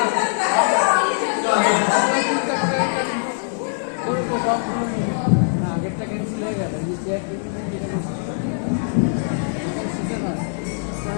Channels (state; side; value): silent; right; digital silence